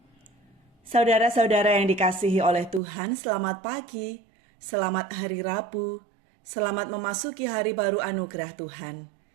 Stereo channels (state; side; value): drops out; left; at 2.8 s